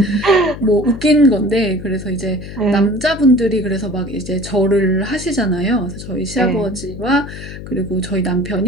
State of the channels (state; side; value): noise; left; hum, 11 dB below the sound